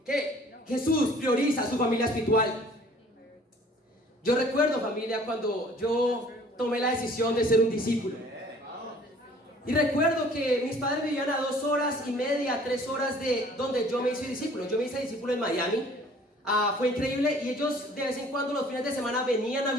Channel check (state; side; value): normal; both; correlation 0.53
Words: que Jesús prioriza a su familia espiritual. Yo recuerdo, familia, cuando yo tomé la decisión de ser un discípulo. Y recuerdo que mis padres vivían a 2 horas y media, 3 horas de donde yo me hice discípulo. Yo me hice discípulo en Miami. Fue increíble y ellos de vez en cuando los fines de semana venían a